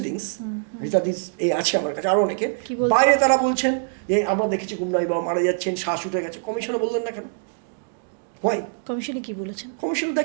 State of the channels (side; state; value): left; silent; digital silence